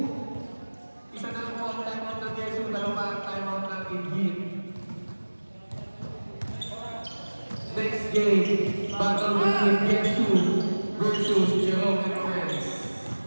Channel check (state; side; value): inverted; both; correlation -1.00